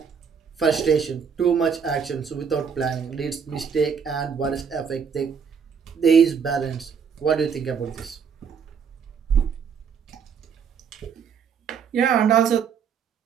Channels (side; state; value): left; quieter; 6.8 dB